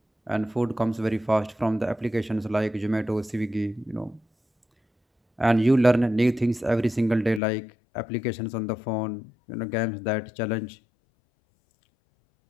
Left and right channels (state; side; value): drops out; right; at 7.4 s